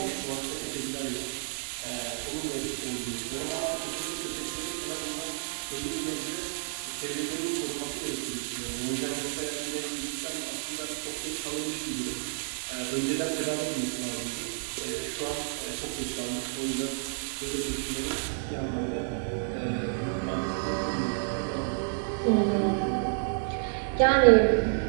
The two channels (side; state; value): left; silent; digital silence